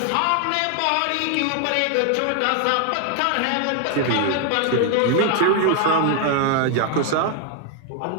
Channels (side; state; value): both; different; correlation 0.00